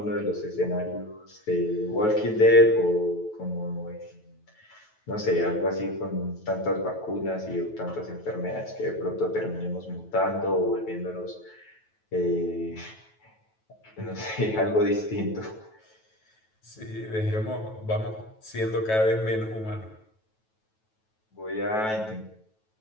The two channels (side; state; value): right; late; 9.2 ms